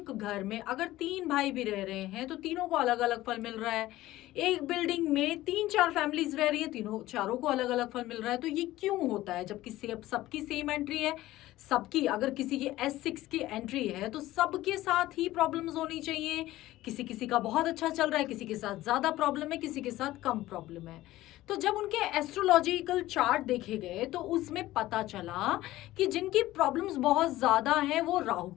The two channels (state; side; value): quieter; right; 16.2 dB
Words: घर में अगर 3 भाई भी रह रहे हैं तो तीनों को अलग अलग फल मिल रहा है। एक बिल्डिंग में 3-4 फैमिलीज रह रही है, तीनों चारों को अलग अलग फल मिल रहा है। तो ये क्यों होता है, जबकि सबकी सेम एंट्री है, सबकी अगर किसी की S6 की एंट्री है तो सबके साथ ही प्रॉब्लम्स होनी चाहिए। किसी किसी का बहुत अच्छा चल रहा है, किसी के साथ ज्यादा प्रॉब्लम है, किसी के साथ कम प्रॉब्लम है। तो जब उनके एस्ट्रोलॉजिकल चार्ट देखे गए तो उसमें पता चला कि जिनकी प्रॉब्लम्स बहुत ज्यादा हैं वो राहु